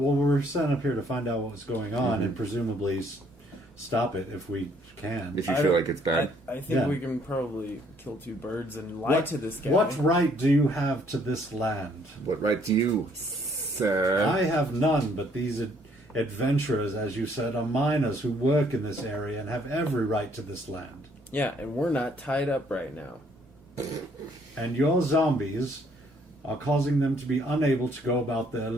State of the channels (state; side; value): normal; both; correlation 0.65